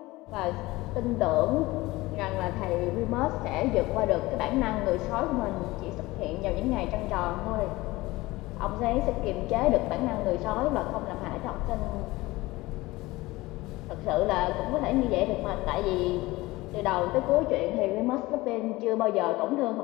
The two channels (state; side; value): quieter; right; 20.0 dB